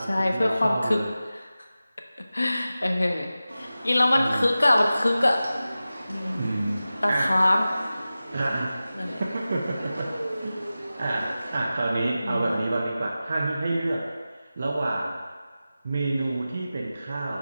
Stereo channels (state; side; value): inverted; both; correlation -0.95